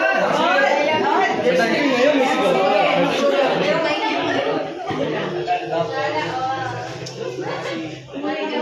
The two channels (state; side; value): identical; both; correlation 1.00